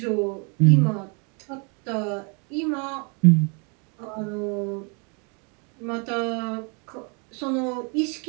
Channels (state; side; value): quieter; left; 35.1 dB